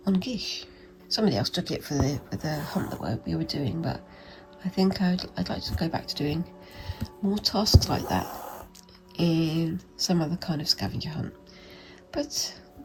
gish. Somebody else took it for the hunt that we were doing, but I think I'd like to go back to doing more tasks like that in some other kind of scavenger hunt. But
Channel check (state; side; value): identical; both; correlation 1.00